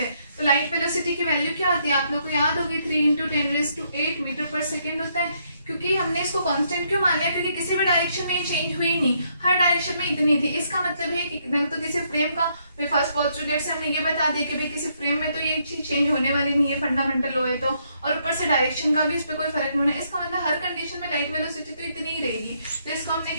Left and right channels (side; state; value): both; inverted; correlation -0.73